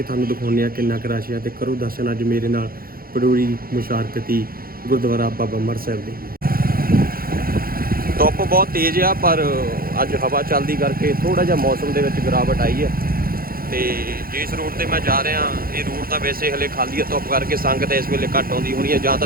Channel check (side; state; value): left; late; 0.43 ms